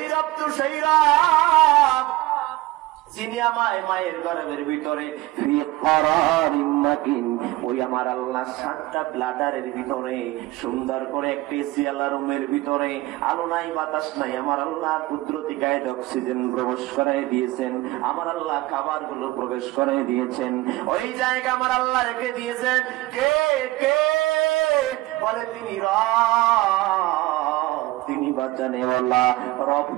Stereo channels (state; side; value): quieter; left; 19.1 dB